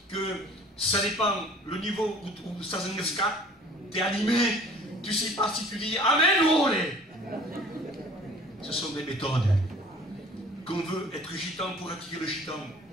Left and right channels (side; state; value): both; normal; correlation 0.49